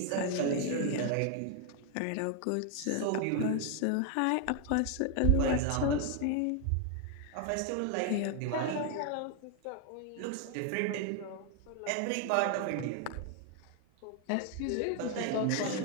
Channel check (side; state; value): both; different; correlation 0.00